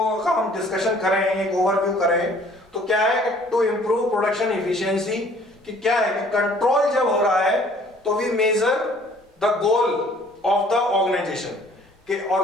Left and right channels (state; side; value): normal; both; correlation 0.56